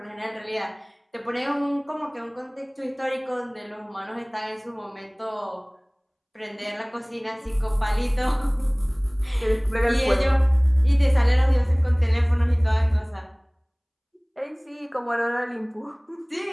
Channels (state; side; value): identical; both; correlation 1.00